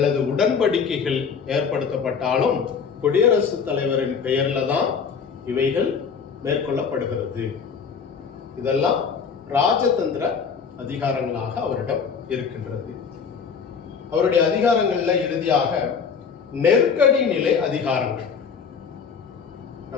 உடன்படிக்கைகள் ஏற்படுத்தப்பட்டாலும் குடியரசுத் தலைவரின் பெயர்ல தான் இவைகள் மேற்கொள்ளப்படுகிறது. இதெல்லாம் ராஜதந்திர அதிகாரங்களாக அவரிடம் இருக்கின்றது. அவருடைய அதிகாரங்கள்ல இறுதியாக நெருக்கடி நிலை அதிகாரங்கள்.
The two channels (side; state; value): right; quieter; 6.1 dB